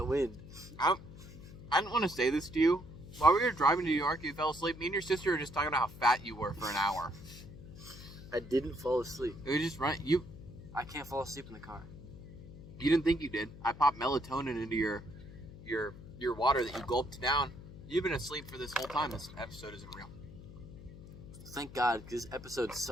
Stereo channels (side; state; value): left; noise; hum, 15 dB below the sound